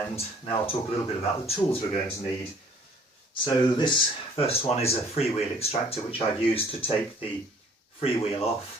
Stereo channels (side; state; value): both; normal; correlation 0.56